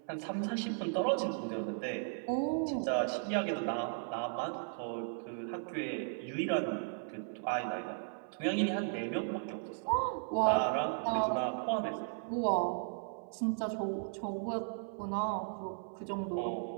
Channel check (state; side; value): silent; left; 54 dB below the other